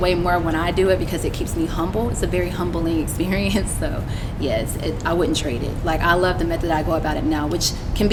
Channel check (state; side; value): identical; both; correlation 1.00